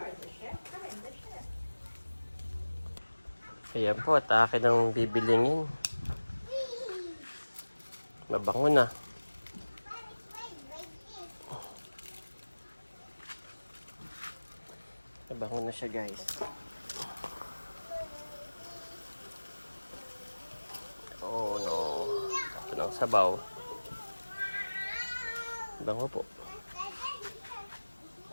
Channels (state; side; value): inverted; both; correlation -1.00